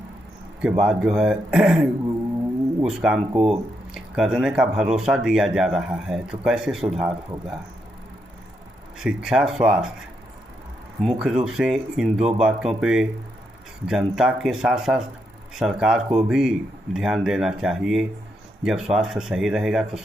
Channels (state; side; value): normal; both; correlation 0.81